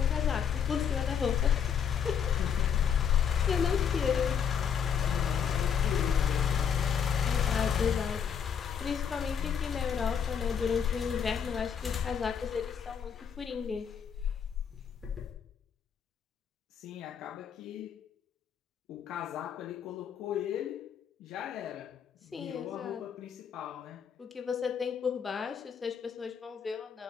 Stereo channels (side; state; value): right; quieter; 7.6 dB